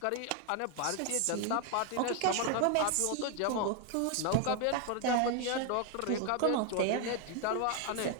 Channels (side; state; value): both; different; correlation 0.01